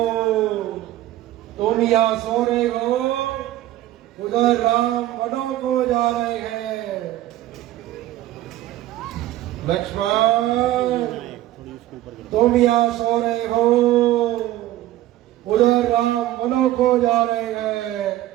तुम यहाँ सो रहे हो उधर राम वनों को जा रहे हैं। लक्ष्मण, तुम यहाँ सो रहे हो, उधर राम वनों को जा रहे हैं।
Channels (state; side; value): quieter; left; 14.6 dB